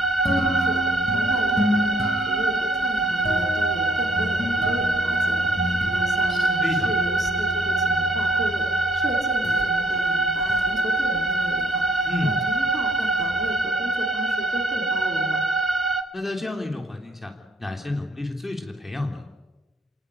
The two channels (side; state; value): both; normal; correlation 0.65